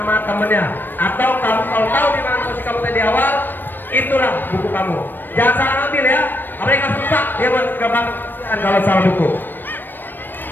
temennya. Atau kamu kalau tahu di mana posisi kamu tadi awal, itulah buku kamu. Jangan salah ambil ya. Apalagi nggak susah dia buat gampang kalau salah buku.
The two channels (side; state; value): right; late; 0.093 ms